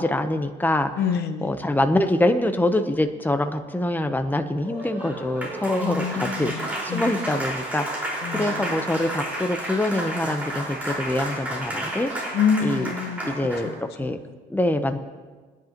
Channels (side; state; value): both; normal; correlation 0.75